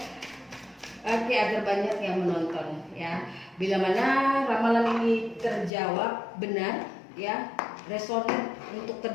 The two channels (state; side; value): drops out; right; at 5.7 s